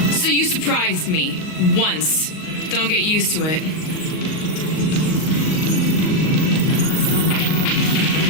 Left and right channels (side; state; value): right; late; 38 ms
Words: So you surprised me. Once. Don't get used to it.